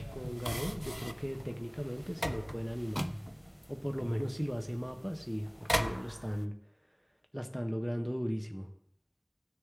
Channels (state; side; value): identical; both; correlation 1.00